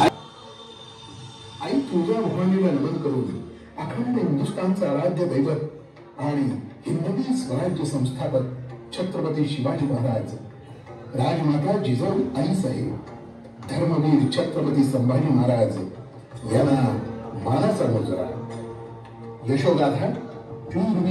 आई तुळजा भवानीला नमन करून अखंड हिंदुस्थानचा आराध्य दैवत आणि हिंदवी स्वराज्य संस्थापक छत्रपती शिवाजी महाराज, राजमाता जिजाऊ आईसाहेब, धर्मवीर छत्रपती संभाजी महाराज यांना मानाचा मुजरा। यशोगाथा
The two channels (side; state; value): both; identical; correlation 1.00